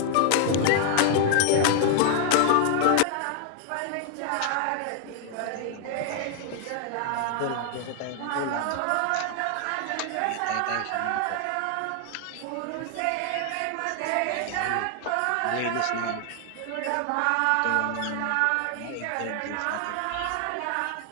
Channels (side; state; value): both; different; correlation 0.00